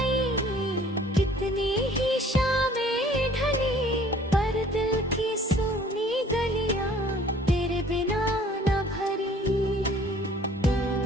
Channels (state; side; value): normal; both; correlation 0.54